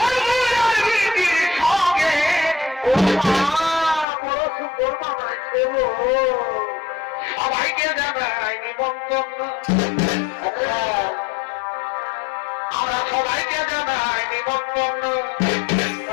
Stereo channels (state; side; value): drops out; right; at 4.0 s